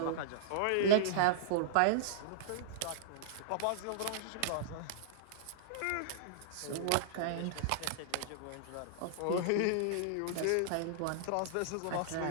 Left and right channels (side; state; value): both; different; correlation -0.02